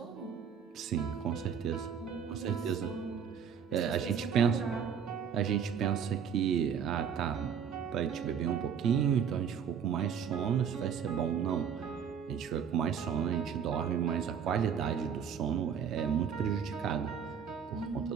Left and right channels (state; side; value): quieter; left; 7.5 dB